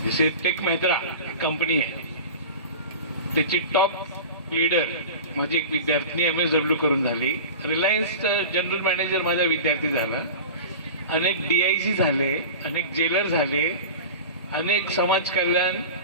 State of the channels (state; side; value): inverted; both; correlation -0.33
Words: जसे टेक महिंद्रा कंपनी आहे त्याची टॉप लीडर माझी एक विद्यार्थिनी MSW करून झाली। रिलायन्स जनरल मॅनेजर माझा विद्यार्थी झाला। अनेक DIC झाले, अनेक जेलर झाले, अनेक समाज कल्याण